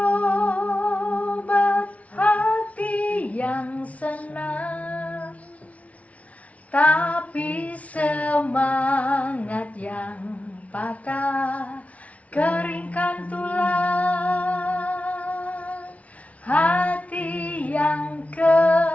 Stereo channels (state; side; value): late; right; 0.066 ms